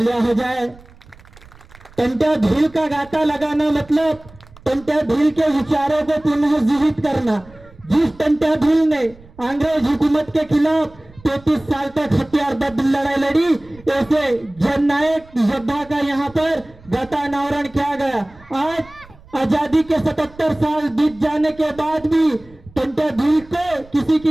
हो जाए। टंट्या भील का गाता लगाना मतलब टंट्या भील के विचारों को पुनः जीवित करना। जिस टंट्या भील ने अंग्रेज हुकूमत के खिलाफ 33 साल तक हथियारबद्ध लड़ाई लड़ी, ऐसे जननायक योद्धा का यहाँ पर गाता अनावरण किया गया। आज आजादी के 77 साल बीत जाने के बाद भी टंट्या भील को किसी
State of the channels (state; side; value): noise; right; rumble, 24 dB below the sound